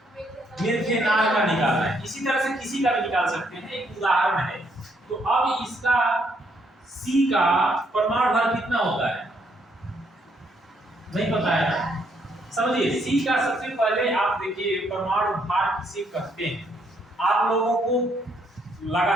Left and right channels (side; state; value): both; normal; correlation 0.72